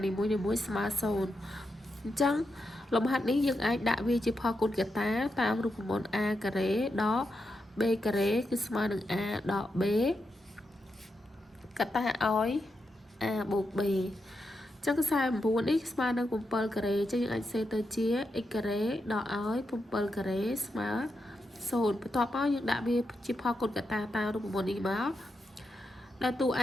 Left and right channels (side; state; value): both; normal; correlation 0.86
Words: នីមួយៗស្មើ0អញ្ចឹងលំហាត់នេះយើងអាចដាក់វាជាផលគុណកតាតាមរូបមន្ត a ការ៉េដក b ការ៉េគឺស្មើនឹង a ដក b កតាឲ្យ a បូក b ចឹង49នេះស្មើនឹង7ការ៉េចឹងយើងអាចសេទៅជា x ការ៉េដកឲ្យ7ការ៉េស្មើ0បន្ទាប់មកយើងដាក់វាជាផលគុណកតាតាមរូបមន្តនេះមកដែលតួ